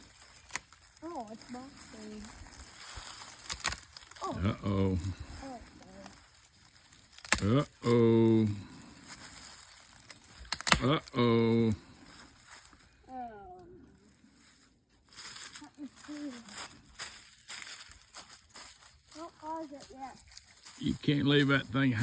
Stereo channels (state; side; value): identical; both; correlation 1.00